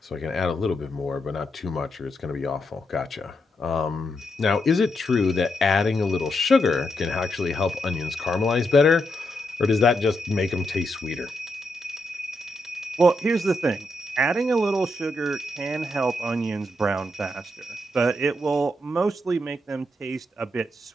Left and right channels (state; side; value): normal; both; correlation 0.82